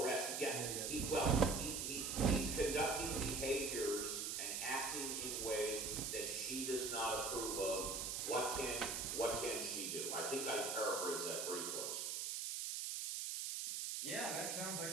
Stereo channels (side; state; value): right; noise; hiss, 2 dB below the sound